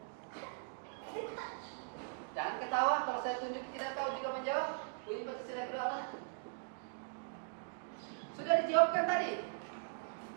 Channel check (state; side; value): silent; left; digital silence